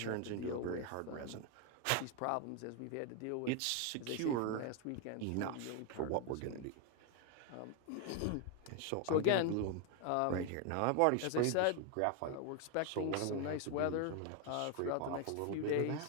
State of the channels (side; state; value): both; different; correlation 0.01